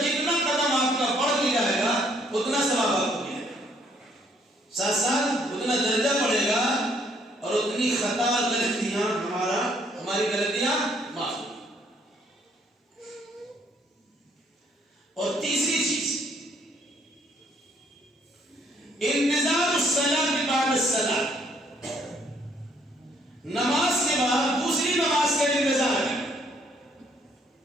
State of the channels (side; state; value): both; normal; correlation 0.67